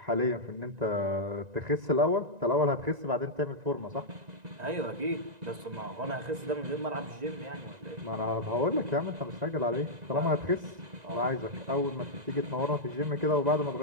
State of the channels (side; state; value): left; late; 1.9 ms